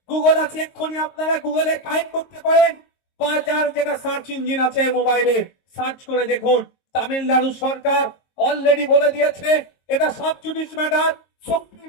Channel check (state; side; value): late; right; 22 ms